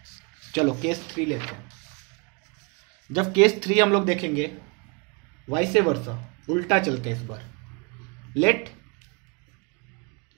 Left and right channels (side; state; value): left; quieter; 32.1 dB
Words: चलो केस 3 लेते हैं। जब केस 3 हम लोग देखेंगे, वाइसे वर्सा, उल्टा चलते हैं इस बार। Let